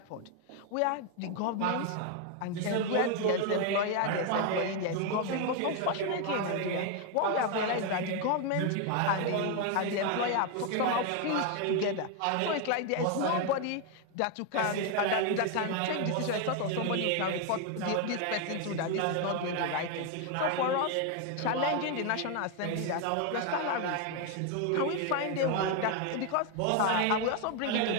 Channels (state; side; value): different; both; correlation 0.01